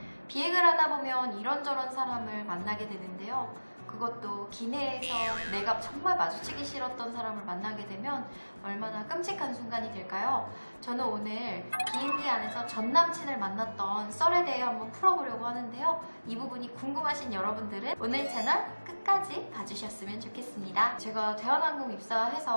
비행을 하다 보면 이런저런 사람을 만나게 되는데요. 그것도 기내에서 내가 정말 마주치기 싫었던 사람을 만나게 되면 얼마나 끔찍한 순간이 될까요? 저는 오늘 비행기 안에서 전 남친을 만났던 썰에 대해 한번 풀어보려고 하는데요. 이 부분이 궁금하신 여러분들은 오늘 채널 끝까지 봐주셨으면 좋겠습니다. 제가 대한항공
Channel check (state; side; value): inverted; both; correlation -1.00